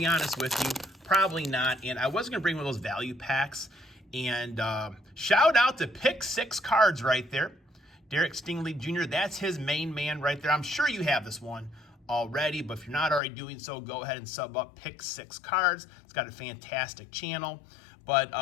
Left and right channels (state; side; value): drops out; right; at 13.2 s